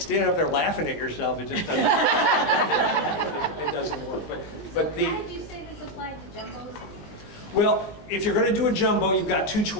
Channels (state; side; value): late; right; 20 ms